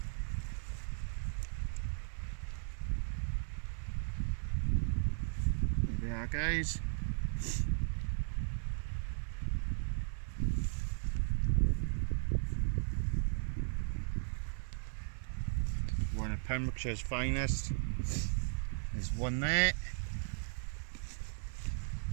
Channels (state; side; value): silent; left; 53 dB below the other